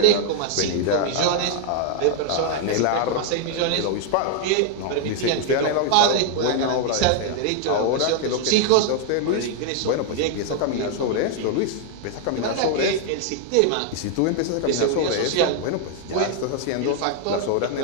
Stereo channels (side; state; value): both; different; correlation 0.00